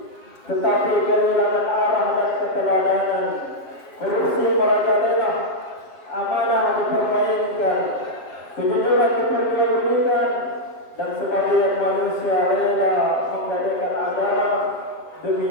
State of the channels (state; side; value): late; right; 7.5 ms